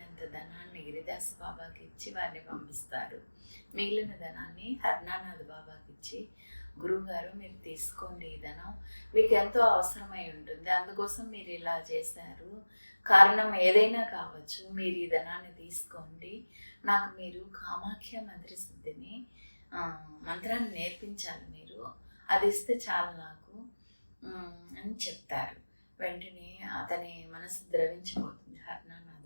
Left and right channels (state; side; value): inverted; both; correlation -1.00